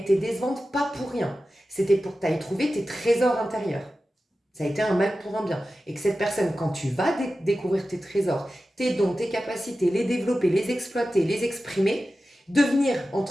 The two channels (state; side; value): normal; both; correlation 0.94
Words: décevante pas pour rien. C'était pour que tu ailles trouver tes trésors intérieurs. Ça a été un mal pour un bien. Et que cette personne, quand tu vas découvrir tes trésors, tes dons, tes capacités, les développer, les exploiter, les exprimer, devenir,